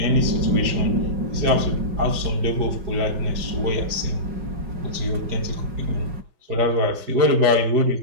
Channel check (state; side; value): late; left; 4.9 ms